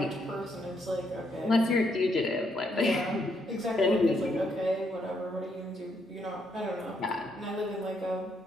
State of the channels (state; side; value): normal; both; correlation 0.75